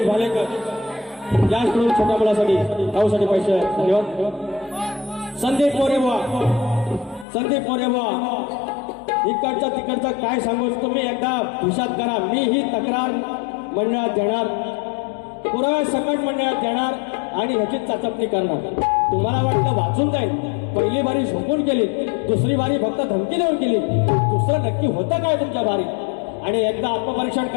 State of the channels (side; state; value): right; drops out; at 7.2 s